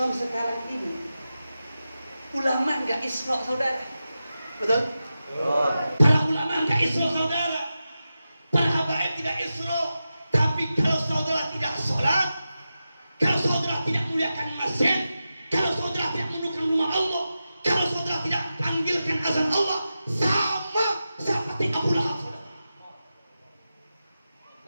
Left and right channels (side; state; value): both; inverted; correlation -0.92